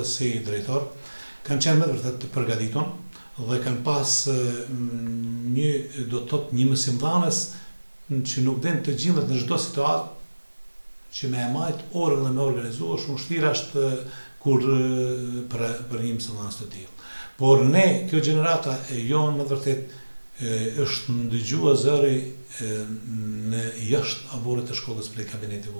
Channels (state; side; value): inverted; both; correlation -1.00